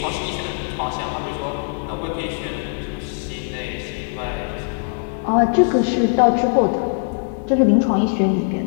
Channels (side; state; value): right; silent; digital silence